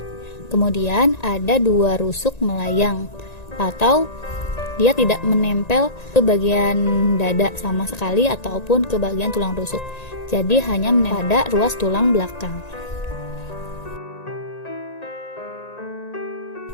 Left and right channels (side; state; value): right; late; 1.9 ms